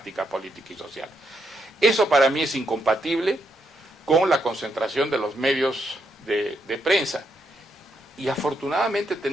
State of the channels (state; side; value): normal; both; correlation 0.79